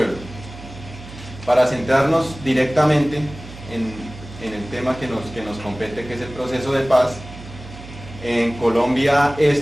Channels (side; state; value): right; noise; hum, 15 dB below the sound